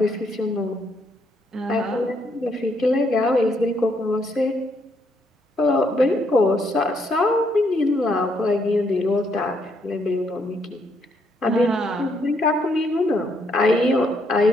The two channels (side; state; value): both; normal; correlation 0.73